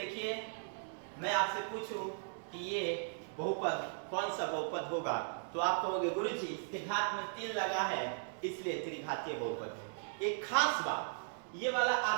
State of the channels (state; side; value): silent; left; 53 dB below the other